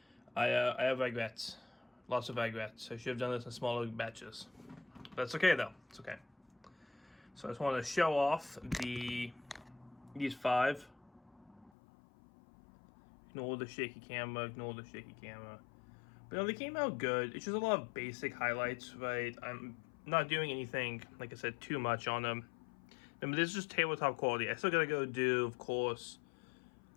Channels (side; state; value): right; drops out; at 11.7 s